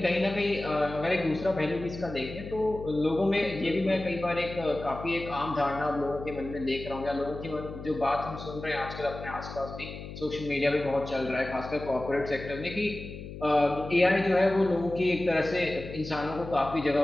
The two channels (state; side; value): noise; left; hum, 11 dB below the sound